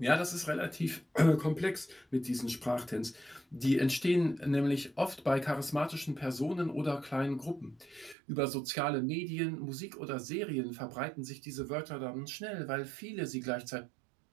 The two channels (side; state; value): left; drops out; at 8.2 s